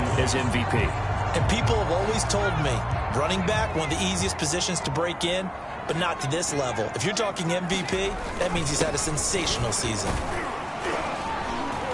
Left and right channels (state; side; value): identical; both; correlation 1.00